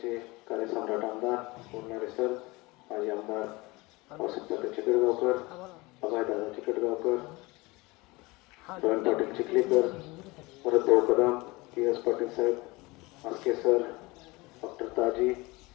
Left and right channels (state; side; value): quieter; right; 23.0 dB